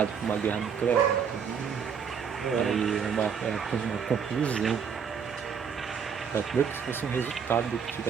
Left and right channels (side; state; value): left; quieter; 6.9 dB